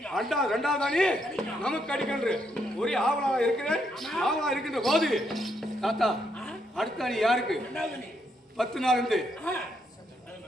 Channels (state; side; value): normal; both; correlation 0.76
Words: ரெண்டாவது அணி நமக்கு கிடைக்கின்ற ஒரே ஆவலா இருக்கிறேன். ஆவலா இருக்கின்ற போது தாத்தா அடுத்த அணி யாருக்கு? 10 நாள் இருந்து